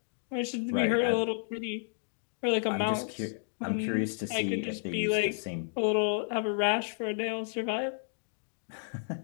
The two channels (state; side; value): silent; right; digital silence